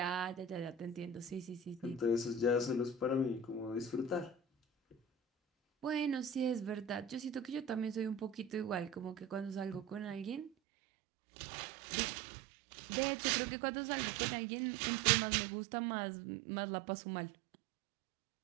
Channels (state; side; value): drops out; left; at 10.5 s